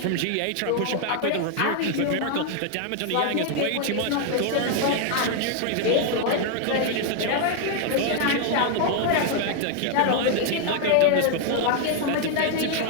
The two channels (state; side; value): different; both; correlation 0.00